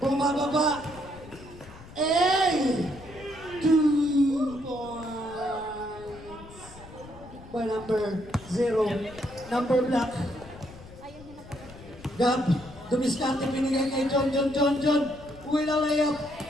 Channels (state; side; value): noise; left; rumble, 18 dB below the sound